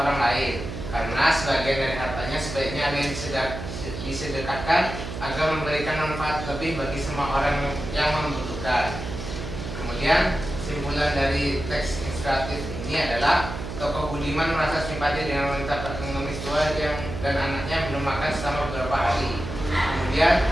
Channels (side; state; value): right; noise; hum, 7 dB below the sound